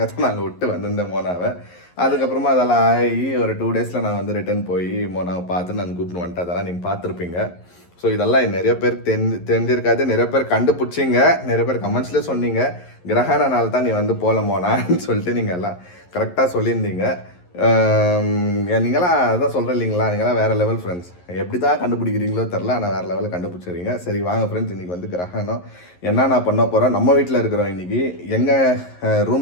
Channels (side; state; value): right; late; 11 ms